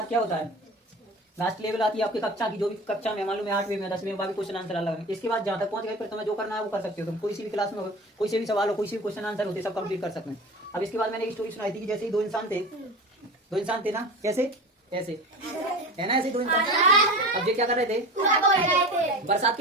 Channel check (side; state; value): both; normal; correlation 0.33